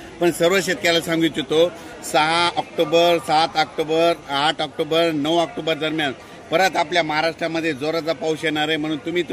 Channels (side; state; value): both; identical; correlation 1.00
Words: पण सर्व शेतकऱ्याला सांगू इच्छितो 6 ऑक्टोबर, 7 ऑक्टोबर, 8 ऑक्टोबर, 9 ऑक्टोबर दरम्यान परत आपल्या महाराष्ट्रामध्ये जोराचा पाऊस येणार आहे, म्हणून तुम्ही